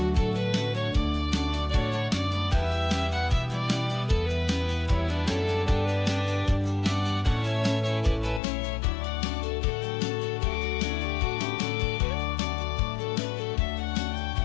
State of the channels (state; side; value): drops out; right; at 8.4 s